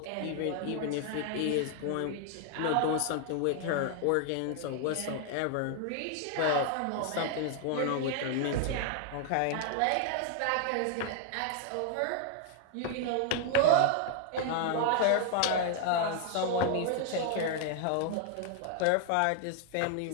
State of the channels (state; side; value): different; both; correlation 0.00